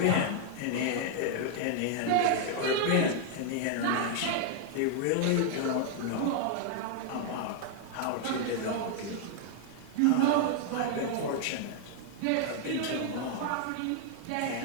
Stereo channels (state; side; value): different; both; correlation 0.00